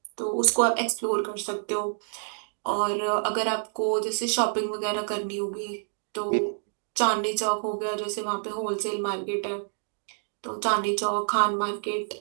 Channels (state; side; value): silent; left; digital silence